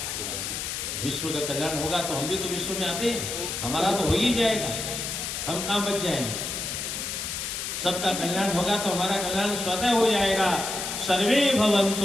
कल्याण होगा, तो हम भी तो विश्व में आते हैं, हमारा तो हो ही जाएगा, हम कहां बच जाएंगे। सबका कल्याण होगा तो हमारा कल्याण स्वतः हो जाएगा। सर्वे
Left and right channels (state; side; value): noise; left; hiss, 4 dB below the sound